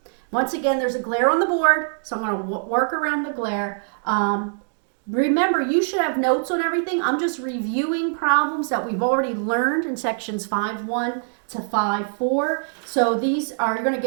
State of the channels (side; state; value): left; silent; digital silence